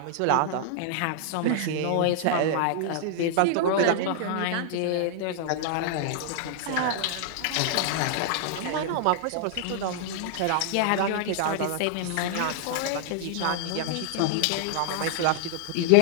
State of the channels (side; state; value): both; different; correlation -0.01